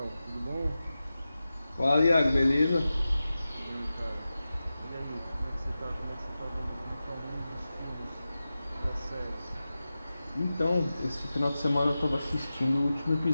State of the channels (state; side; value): inverted; both; correlation -0.94